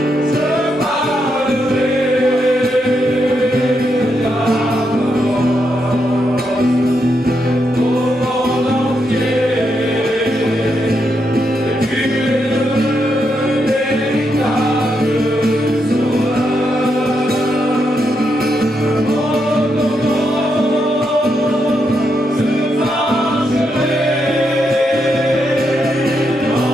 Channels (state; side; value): normal; both; correlation 0.81